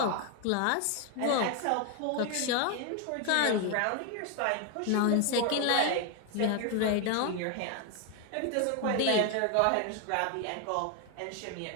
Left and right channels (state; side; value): different; both; correlation 0.01